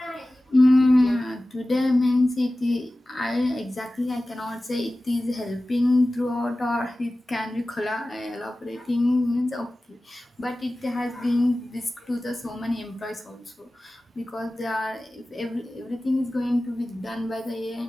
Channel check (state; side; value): normal; both; correlation 0.96